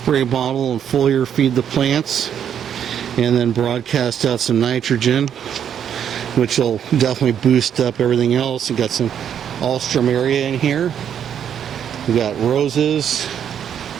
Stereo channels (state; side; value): quieter; left; 8.8 dB